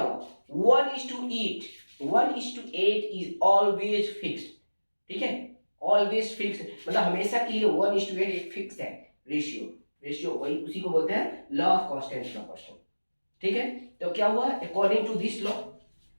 1:8। 1:8 इज ऑलवेज फिक्स्ड। ठीक है, ऑलवेज फिक्स्ड, मतलब हमेशा के लिए 1:8 एक फिक्स है रेशियो वही, उसी को बोलते हैं लॉ ऑफ कांस्टेंट प्रोपोर्शन। ठीक है, तो क्या हुआ? अकॉर्डिंग टू दिस लॉ,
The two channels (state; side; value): inverted; both; correlation -1.00